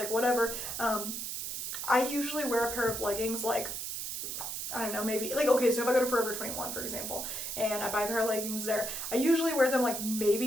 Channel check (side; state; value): right; noise; hiss, 4 dB below the sound